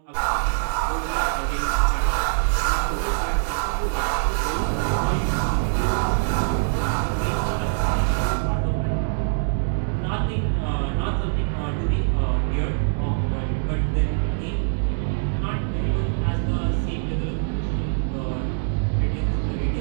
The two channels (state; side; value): silent; left; digital silence